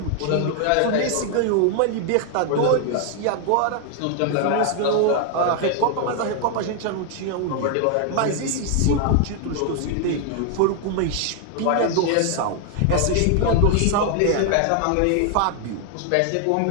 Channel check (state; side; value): different; both; correlation 0.00